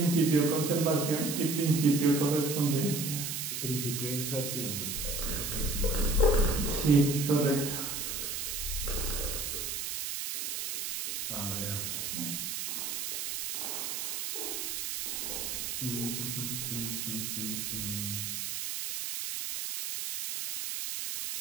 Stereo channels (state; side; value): noise; right; hiss, 3 dB below the sound